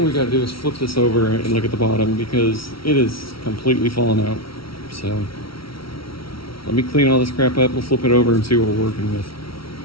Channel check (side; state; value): right; late; 0.75 ms